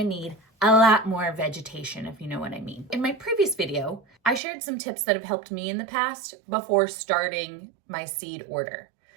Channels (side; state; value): left; drops out; at 4.4 s